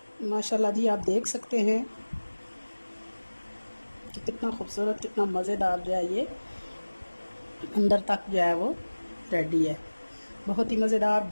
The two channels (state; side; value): inverted; both; correlation -1.00